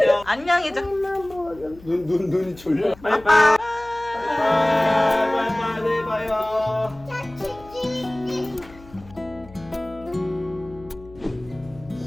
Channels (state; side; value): noise; left; hum, 21 dB below the sound